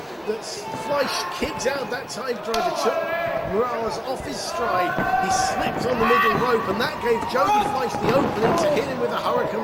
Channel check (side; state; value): both; identical; correlation 1.00